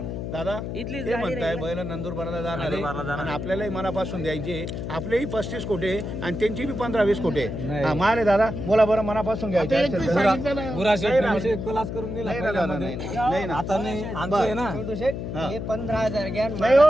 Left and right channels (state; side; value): noise; left; hum, 5 dB below the sound